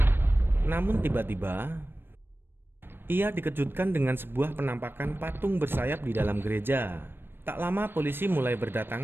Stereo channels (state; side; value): late; left; 0.10 ms